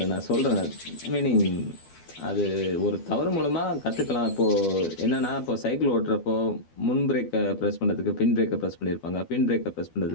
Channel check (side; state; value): right; late; 12 ms